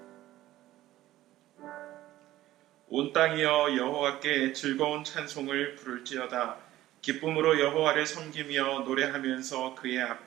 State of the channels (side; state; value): left; quieter; 15.0 dB